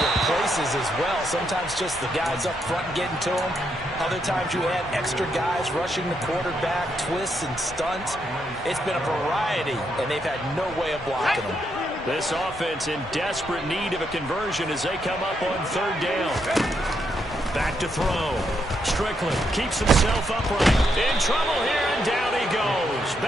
places as well. Sometimes just the guys up front getting to them. Other times you add extra guys rushing the quarterback, twists and stunts. It's been a variety, and they've had no way of blocking them. This offense in desperate need of a conversion as they come up on 3rd down. Back to throw. Strickland keeps himself upright. In trouble here, and down he goes.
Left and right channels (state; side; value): normal; both; correlation 0.78